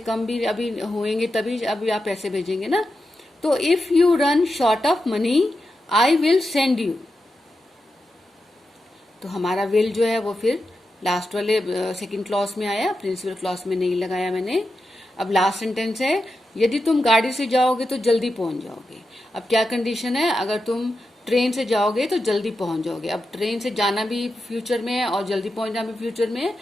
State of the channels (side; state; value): both; normal; correlation 0.89